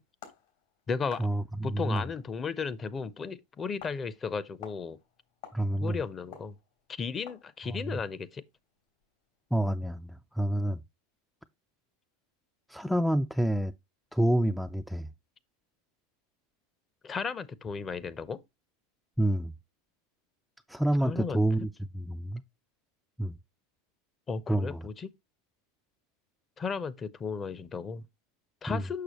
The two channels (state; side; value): normal; both; correlation 0.90